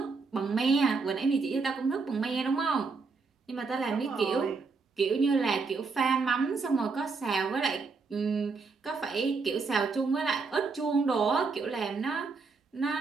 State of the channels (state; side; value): quieter; left; 4.5 dB